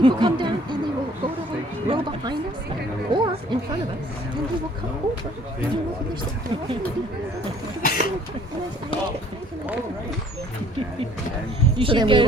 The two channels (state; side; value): normal; both; correlation 0.57